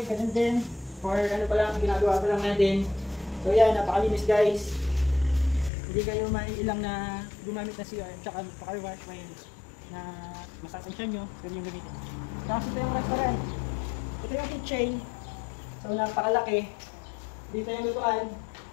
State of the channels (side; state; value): right; drops out; at 5.7 s